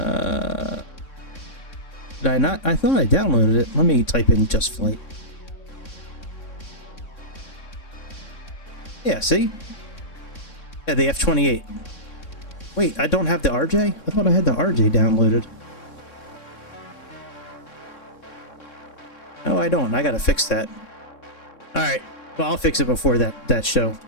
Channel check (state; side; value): late; right; 3.6 ms